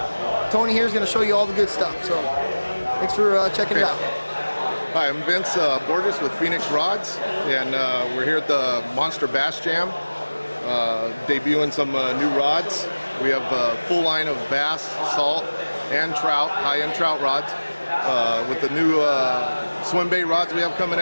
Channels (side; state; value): both; inverted; correlation -1.00